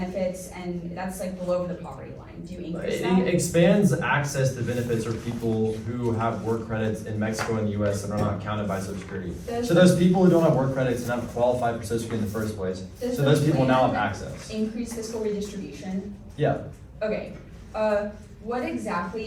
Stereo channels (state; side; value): identical; both; correlation 1.00